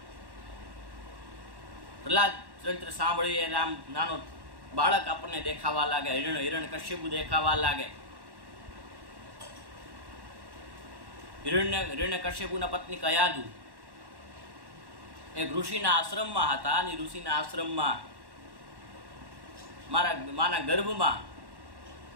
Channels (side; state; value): left; late; 1.1 ms